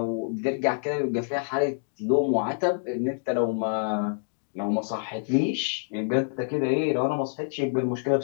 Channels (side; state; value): right; silent; digital silence